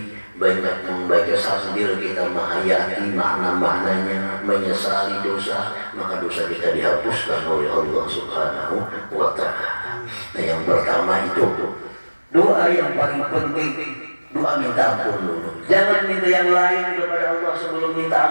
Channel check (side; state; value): both; inverted; correlation -1.00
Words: banyak membaca sambil kita menghayati makna-maknanya, menyesali dosa, maka dosa kita dihapuskan oleh Allah Subhanahu wa ta'ala. Nah, yang pertama itu doa yang paling penting, doa minta ampun dulu. Jangan minta yang lain kepada Allah sebelum minta